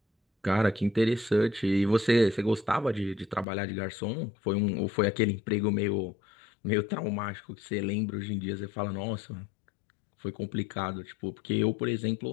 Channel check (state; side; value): drops out; right; at 3.5 s